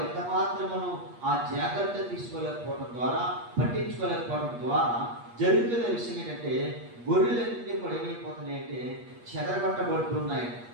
ఎంత మాత్రమును ఆ జాగ్రత్త తీసుకోలేకపోవడం ద్వారా, పట్టించుకోలేకపోవడం ద్వారా జరుగుతున్న విషయం ఏంటంటే గొర్రెలన్నీ కూడా ఏమైపోతున్నాయంటే చెదరగొట్టబడుతున్నాయి.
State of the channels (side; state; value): left; late; 8.4 ms